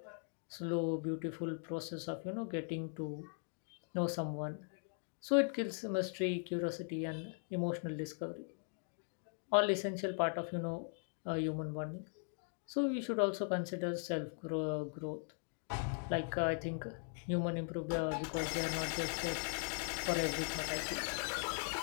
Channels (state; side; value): silent; right; 51 dB below the other